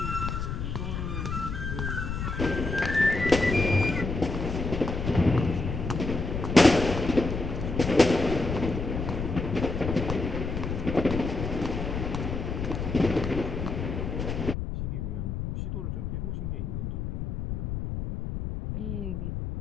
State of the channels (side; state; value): left; noise; rumble, 3 dB below the sound